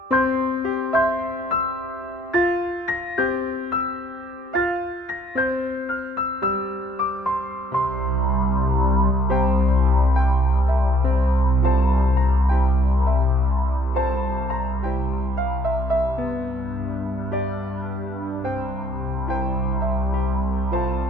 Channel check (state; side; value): normal; both; correlation 0.61